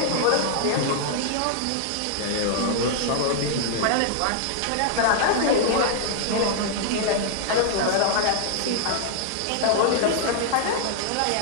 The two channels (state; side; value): different; both; correlation -0.01